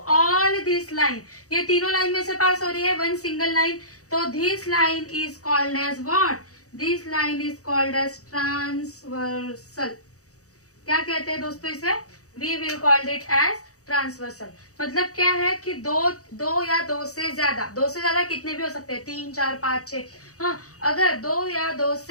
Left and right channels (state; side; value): late; right; 0.65 ms